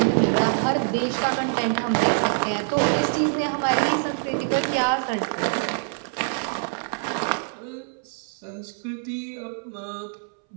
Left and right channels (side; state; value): left; silent; 61 dB below the other